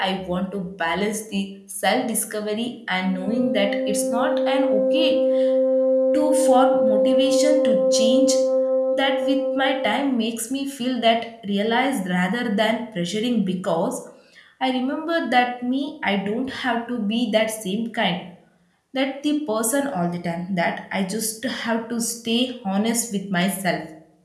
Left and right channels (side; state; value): both; identical; correlation 1.00